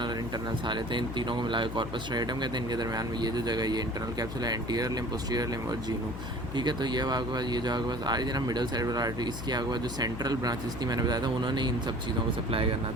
और इंटरनल सारे थे। इन तीनों को मिलाकर कॉर्पस स्ट्राइएटम कहते हैं। इनके दरमियान में ये जो जगह, ये इंटरनल कैप्सूल है, एंटीरियर लिम्ब, पोस्टीरियर लिम्ब और जीनू। ठीक है। तो ये आपके पास ये जो आपके पास आ रही थी ना मिडल सेरिब्रल आर्टरी, इसकी आपके पास जो सेंट्रल ब्रांचेस थी, मैंने बताया था उन्होंने इन सब चीज़ों को सप्लाई करना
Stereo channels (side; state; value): left; noise; hum, 8 dB below the sound